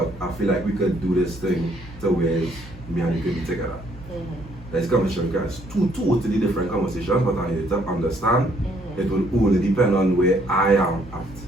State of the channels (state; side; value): normal; both; correlation 0.66